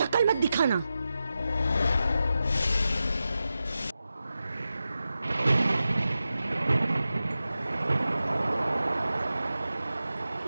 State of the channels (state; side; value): inverted; both; correlation -0.92